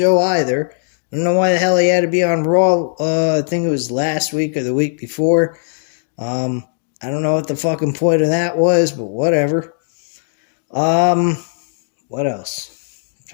either. I don't know why the hell he had to be on Raw. I think it was last week or the week before. I don't know what the fucking point of that was, but whatever. What else? I'm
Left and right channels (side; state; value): right; silent; digital silence